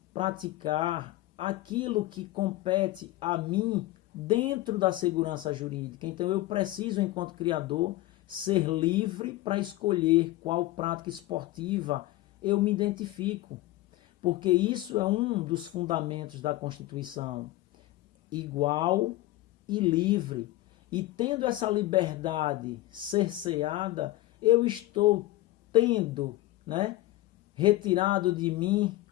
praticar aquilo que compete a mim dentro da segurança jurídica. Então eu preciso, enquanto criador, ser livre para escolher qual prática esportiva eu me identifico. Porque isso é um dos fundamentos da Constituição. Igual e livre. E tendo essa liberdade cerceada, eu estou tendo, retirado de mim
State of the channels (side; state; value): right; quieter; 16.8 dB